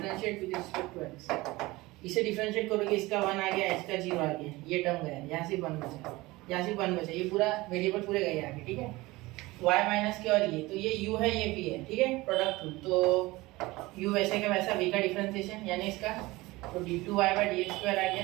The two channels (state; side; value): quieter; left; 20.7 dB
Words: with respect to x। इसे डिफरेंशिएट करोगे, इसका 1 आ गया, इसका 0 आ गया, ये टर्म गया, यहाँ से 1 बचा, यहाँ से 1 बचा, ये पूरा वेरिएबल पूरे गए आगे, ठीक है। y माइनस के और ये, तो ये u है, ये v है, ठीक है, प्रोडक्ट रूल। तो u वैसे का वैसा, v का डिफरेंशिएशन यानी इसका, तो d2y बाय dx स्क्वायर आ